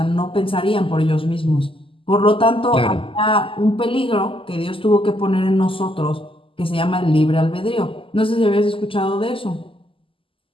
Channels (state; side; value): late; right; 0.25 ms